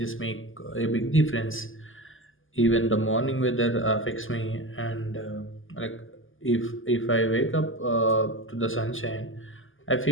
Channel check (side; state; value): right; late; 0.58 ms